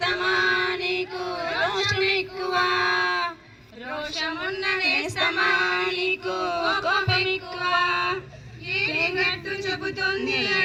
నీకు రోషం ఎక్కువ రోషమున్న నేస్తమా నీకు కోపం ఎక్కువ ఏగట్టు చెబుతుంది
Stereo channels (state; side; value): identical; both; correlation 1.00